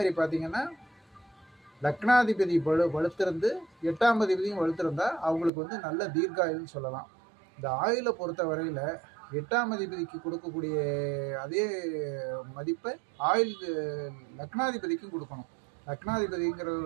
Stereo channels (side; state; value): left; drops out; at 5.5 s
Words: பார்த்தீங்கன்னா லக்னாதிபதி வலுத்திருந்து 8ஆம் அதிபதியும் வலுத்திருந்தா அவங்களுக்கு நல்ல தீர்க்காயுள்னு சொல்லலாம். இந்த ஆயுளை பொறுத்த வரையில் 8ஆம் அதிபதிக்கு கொடுக்கக்கூடிய அதே மதிப்பை லக்னாதிபதிக்கும் கொடுக்கணும்.